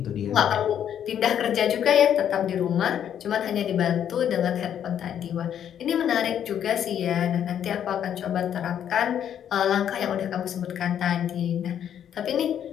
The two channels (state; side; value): quieter; right; 9.5 dB